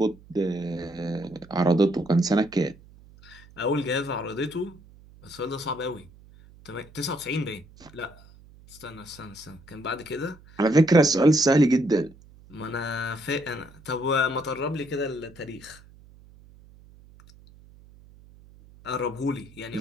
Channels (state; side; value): noise; right; hum, 23 dB below the sound